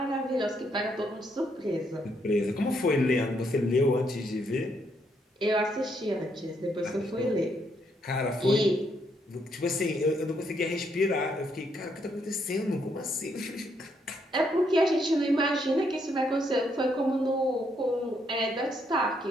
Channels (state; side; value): normal; both; correlation 0.74